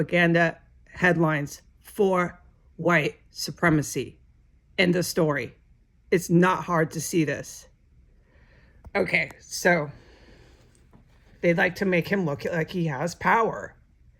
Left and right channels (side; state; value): both; identical; correlation 1.00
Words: headlines for white supremacy. End of story. It's not hard to see this. Okay, so they'd like to make him look like he has power,